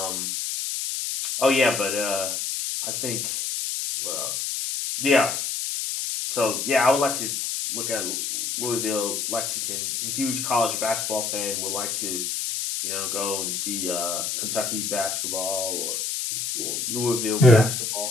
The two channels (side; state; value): left; noise; hiss, 2 dB below the sound